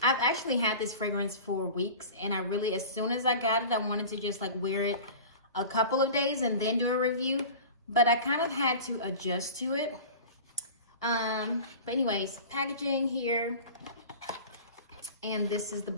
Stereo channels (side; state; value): both; inverted; correlation -0.36